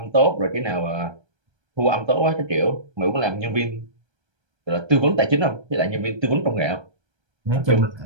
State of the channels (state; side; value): late; left; 1.3 ms